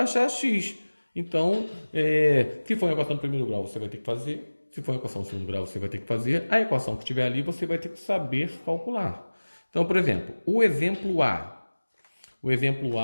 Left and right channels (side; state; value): both; inverted; correlation -1.00